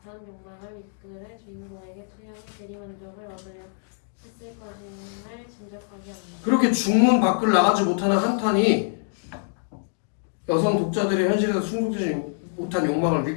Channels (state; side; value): silent; right; digital silence